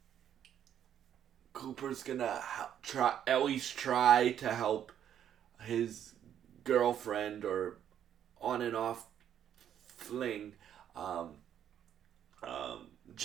gonna at least try to help his girlfriend or on and off fling,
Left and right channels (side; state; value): left; quieter; 9.8 dB